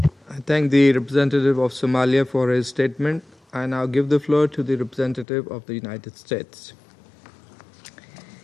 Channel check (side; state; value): right; drops out; at 5.2 s